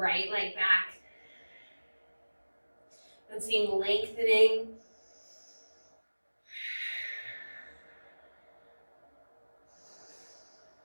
leg back. And seeing lengthening.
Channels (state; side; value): inverted; both; correlation -1.00